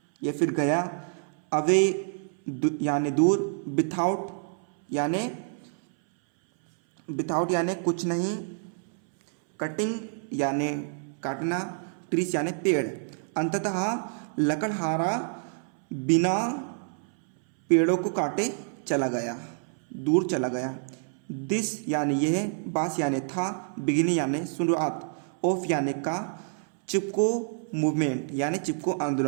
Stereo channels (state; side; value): silent; left; 60 dB below the other